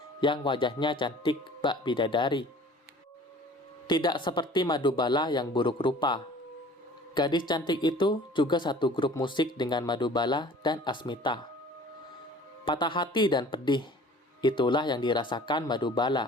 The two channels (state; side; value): normal; both; correlation 0.47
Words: yang wajahnya cantik bak bidadari. Tidak seperti Madubala yang buruk rupa. Gadis cantik itu juga satu grup musik dengan Madubala dan Asmita. Patah hati dan pedih, itulah yang dirasakan